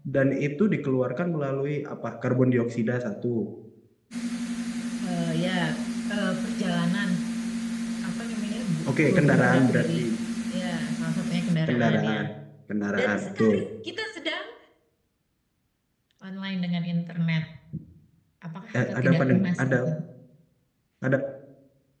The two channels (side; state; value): both; identical; correlation 1.00